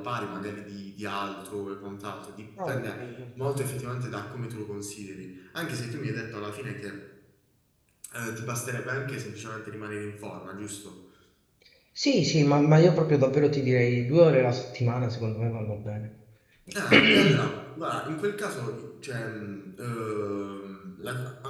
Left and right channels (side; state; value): both; identical; correlation 1.00